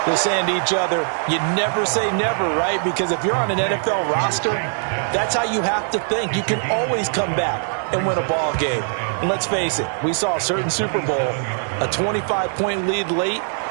they're saying to each other, you never say never, right? Because if you're on an NFL roster, that's how you have to think. You can always come back and win a ball game. And let's face it, we saw a certain Super Bowl, a 25-point lead late,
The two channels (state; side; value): silent; left; 61 dB below the other